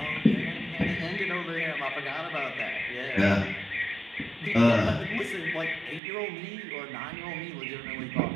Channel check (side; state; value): left; drops out; at 6.0 s